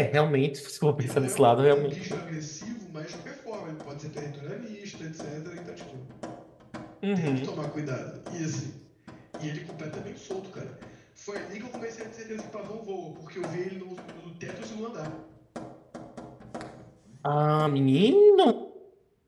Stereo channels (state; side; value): identical; both; correlation 1.00